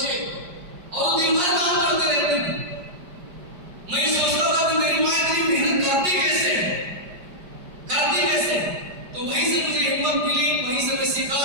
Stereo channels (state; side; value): late; left; 5.0 ms